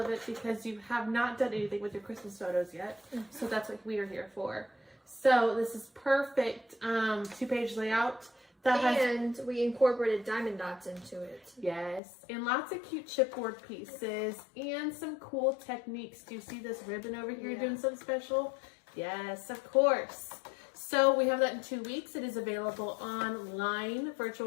because you have not done anything with your Christmas photos yet. So that's what we are here for. So this is perfect 2-page layout. And we incorporated diamond dots into it. Yes, and lots of cute chipboard pieces and some cool techniques. Do you see this ribbon over here doing something special? Yes, of course. So we have that in 2 weeks. It is available online,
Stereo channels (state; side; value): drops out; right; at 12.0 s